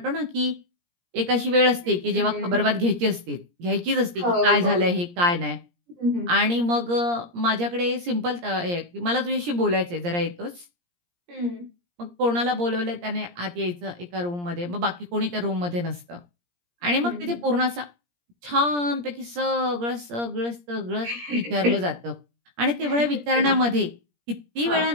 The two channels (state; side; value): late; left; 17 ms